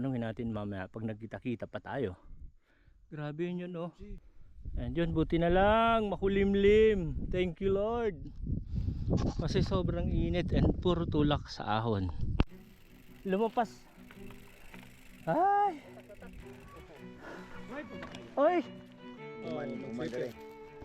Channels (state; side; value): identical; both; correlation 1.00